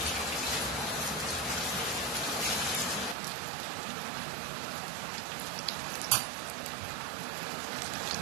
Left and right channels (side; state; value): left; drops out; at 3.2 s